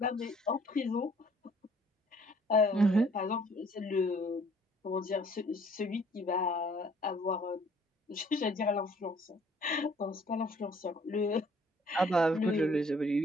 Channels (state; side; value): normal; both; correlation 0.59